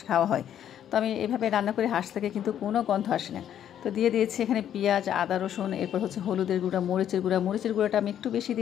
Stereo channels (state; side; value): quieter; right; 10.2 dB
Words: খাওয়া হয়, তো আমি এভাবে রান্না করি, হাঁস থেকে কিন্তু কোনো গন্ধ আসে না। তো দিয়ে দিয়েছি এখানে পেঁয়াজ, আদা, রসুন, এরপর হচ্ছে হলুদের গুঁড়া, মরিচের গুঁড়াটা আমি একটু বেশি